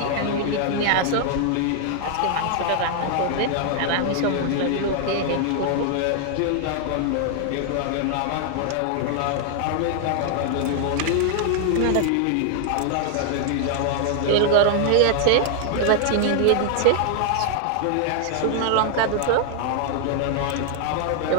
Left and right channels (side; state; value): both; different; correlation 0.00